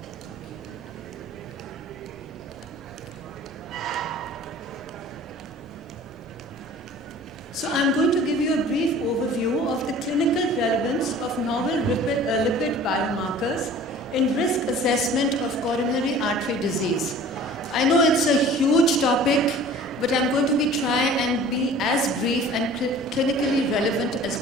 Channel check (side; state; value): both; normal; correlation 0.46